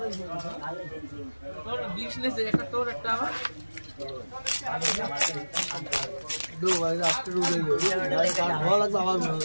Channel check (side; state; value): both; inverted; correlation -1.00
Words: তোর বিজনেস একটা তোর একটা আমার দো ভাই আজকে রুই ভাই কার ভালো লাগবে আমার ভালো